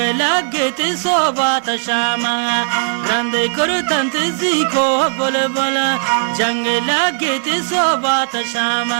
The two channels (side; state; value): left; silent; digital silence